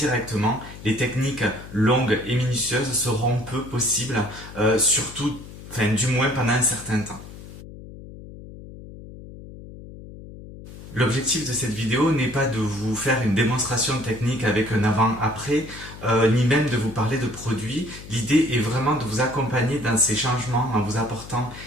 les techniques longues et minutieuses seront peu possibles, du moins pendant un certain temps. L'objectif de cette vidéo n'est pas de vous faire une démonstration technique avec un avant-après, ni même de vous parler de produits. L'idée est vraiment de vous accompagner dans ces changements en vous apportant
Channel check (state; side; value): noise; left; hum, 15 dB below the sound